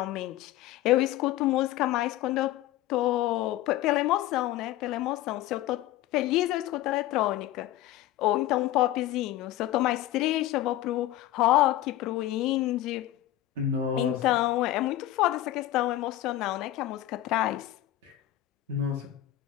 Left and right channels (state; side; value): quieter; right; 14.3 dB